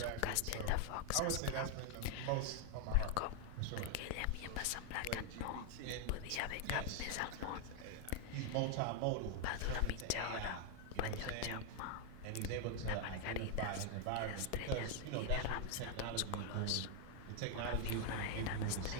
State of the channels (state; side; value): different; both; correlation 0.00